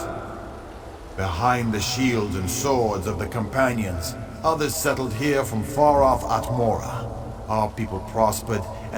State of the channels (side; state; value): both; identical; correlation 1.00